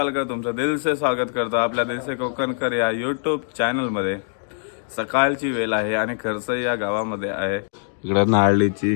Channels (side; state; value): right; silent; digital silence